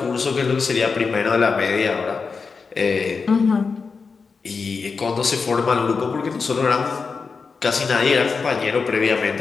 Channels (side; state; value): right; quieter; 4.9 dB